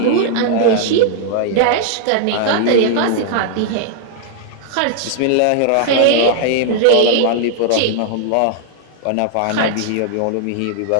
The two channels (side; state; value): both; different; correlation 0.00